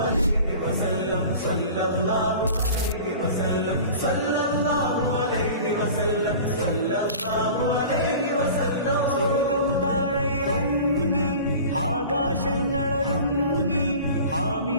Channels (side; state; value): both; inverted; correlation -0.40